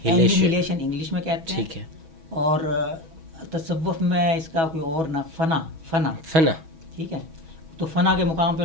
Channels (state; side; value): late; left; 6.2 ms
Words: انگلش میں کہتے ہیں. ٹھیک ہے. اور تصوف میں اس کا کوئی اور نہ فنا. ٹھیک ہے. تو فنا کے مقام پہ